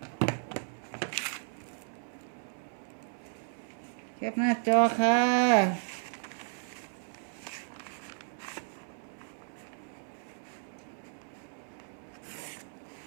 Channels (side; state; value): left; silent; digital silence